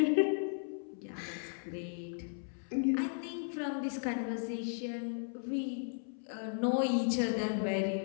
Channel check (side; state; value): right; silent; 54 dB below the other